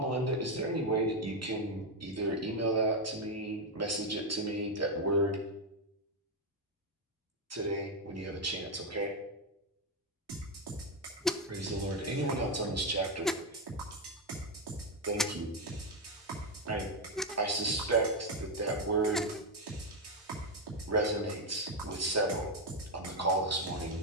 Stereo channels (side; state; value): both; normal; correlation 0.05